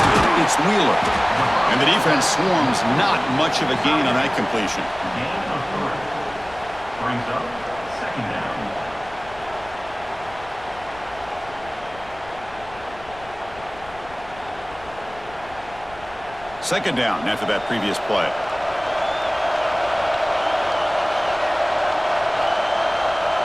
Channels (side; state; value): left; noise; rumble, 20 dB below the sound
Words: It's Wheeler. And the defense swarms. Not much of a gain on that completion. Gain of 3. Brings up 2nd down. Second down after that previous play.